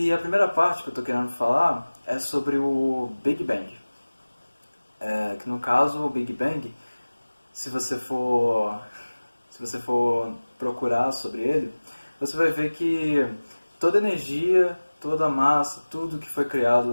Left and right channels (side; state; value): both; inverted; correlation -1.00